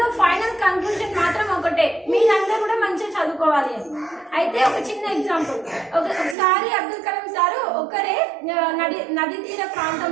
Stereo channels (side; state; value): left; drops out; at 6.4 s